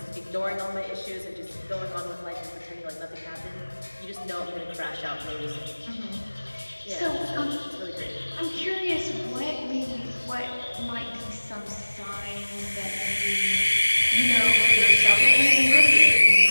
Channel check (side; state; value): both; inverted; correlation -1.00